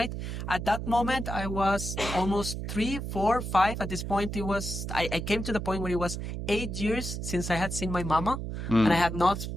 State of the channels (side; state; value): right; noise; hum, 5 dB below the sound